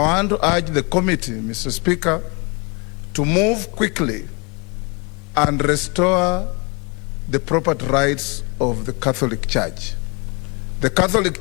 to urge the committee, Mr. Speaker, to move quickly and restore the property rights of the Catholic Church. The Catholic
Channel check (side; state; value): right; quieter; 30.7 dB